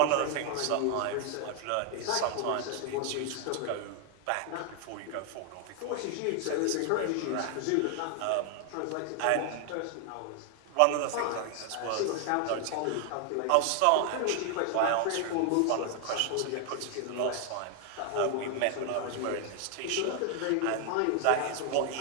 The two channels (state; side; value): different; both; correlation 0.00